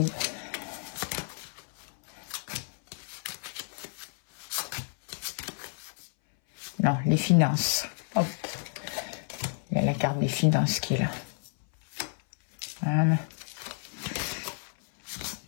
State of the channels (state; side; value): silent; right; 57 dB below the other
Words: Non, les finances. Hop. Il y a la carte des finances qui est là. Voilà.